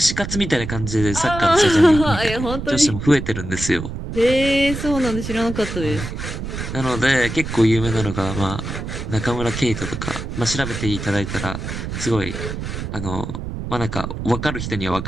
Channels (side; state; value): right; noise; rumble, 6 dB below the sound